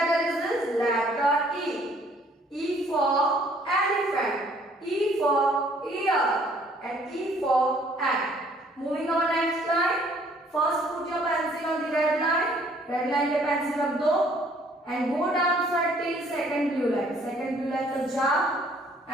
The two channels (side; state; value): both; normal; correlation 0.61